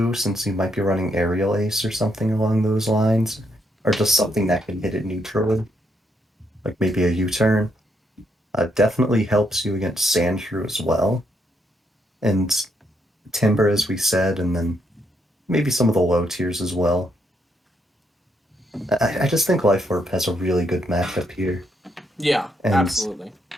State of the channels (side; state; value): both; normal; correlation 0.76